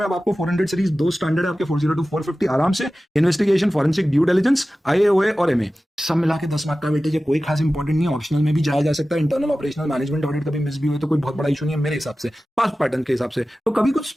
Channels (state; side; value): normal; both; correlation 0.95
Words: अब आपको 400 सीरीज 2 स्टैंडर्ड है आपके 40 to 450 आराम से, investigation, forensic, due diligence, IAOA और MA सब मिला के 10 मार्क का वेटेज है, कोई खास इंपॉर्टेंट नहीं है, ऑप्शनल में भी जाया जा सकता है। इंटरनल ऑपरेशनल मैनेजमेंट ऑडिट कभी मिस भी हुए तो कोई बहुत बड़ा इशू नहीं है मेरे हिसाब से, पास्ट पैटर्न के हिसाब से। तो कभी कुछ